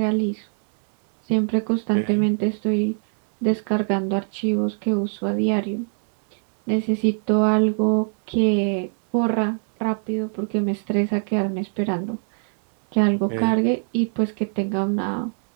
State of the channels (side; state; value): left; silent; digital silence